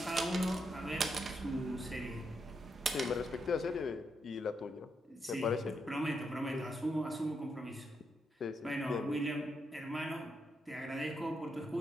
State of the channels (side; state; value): both; normal; correlation 0.81